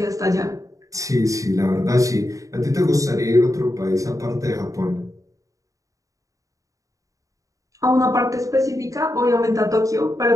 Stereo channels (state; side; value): late; left; 0.16 ms